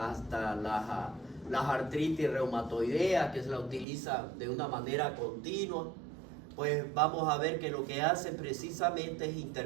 hasta las artritis reumatoideas que se la utilizan de una manera continua, pues vamos a ver que lo que hacen precisamente es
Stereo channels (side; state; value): left; drops out; at 3.9 s